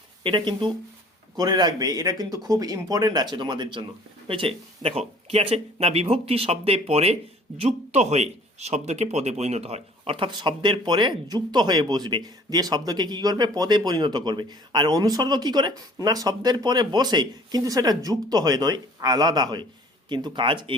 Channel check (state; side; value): normal; both; correlation 0.52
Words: এটা কিন্তু করে রাখবে, এটা কিন্তু খুব ইম্পর্টেন্ট আছে তোমাদের জন্য, হয়েছে? দেখো কি আছে না, বিভক্তি শব্দে পরে যুক্ত হয়ে শব্দকে পদে পরিণত হয়, অর্থাৎ শব্দের পরে যুক্ত হয়ে বসবে, দিয়ে শব্দকে কি করবে? পদে পরিণত করবে। আর অনুসর্গ কি করে না, শব্দের পরে বসে, কিন্তু সেটা যুক্ত হয়ে নয়, আলাদা হয়, কিন্তু কাজ